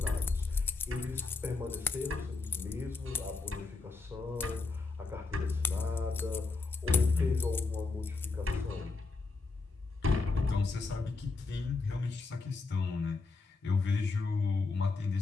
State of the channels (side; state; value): right; quieter; 3.9 dB